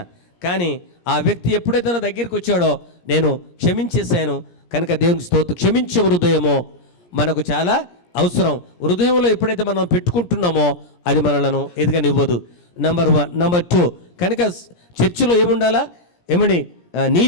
కానీ ఆ వ్యక్తి ఎప్పుడైతే నా దగ్గరికి వచ్చాడో నేను క్షమించేశాను. కనుక దేవునికి స్తోత్రం. క్షమించే హృదయమో మనకు చాలా అవసరం. హృదయంలో ఎప్పుడైతే మనం పెట్టుకుంటున్నామో అది మనలను ఎదగనివ్వదు. నెంబర్ 1. నెంబర్ 2, కనుక చర్చిలో ఏముండాలా?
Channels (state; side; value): late; right; 17 ms